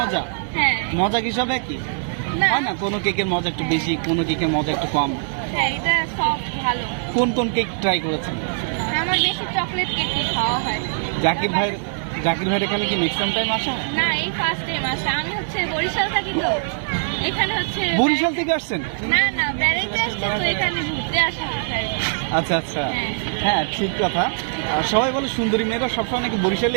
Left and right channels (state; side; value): silent; left; 64 dB below the other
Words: হ্যাঁ। মজা কি সব একই না হয় না? কোনো কেকের মজা একটু বেশি, কোনো কেকের মজা একটু কম। হ্যাঁ, এটা সব ভালো। কোন কোন কেক ট্রাই করেছেন? আমার বেশি চকলেট কেক খাওয়া হয়। জাকির ভাইয়ের এখানে কি নেক্সট টাইম আসা? না, এই ফার্স্ট টাইম আসা। আমি হচ্ছে বরিশাল থাকি, তো এখানে হচ্ছে বরিশাল থেকে আসছেন? না না, বেড়াইতে আসছি, তো এখানে ঘুরতে আসা হচ্ছে। আচ্ছা আচ্ছা, হ্যাঁ ঠিক কথা। সবাই বলে সুন্দরী মেয়েরা সবসময় নাকি